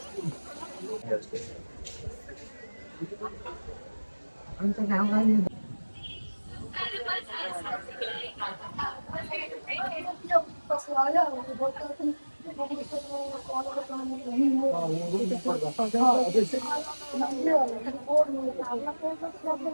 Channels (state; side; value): inverted; both; correlation -1.00